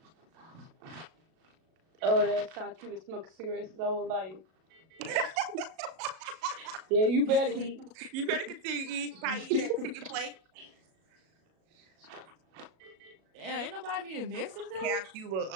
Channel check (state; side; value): late; left; 37 ms